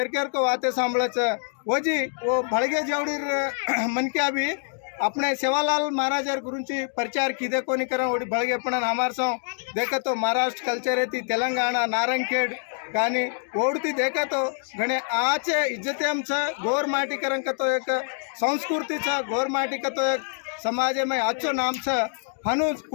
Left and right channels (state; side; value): silent; right; 61 dB below the other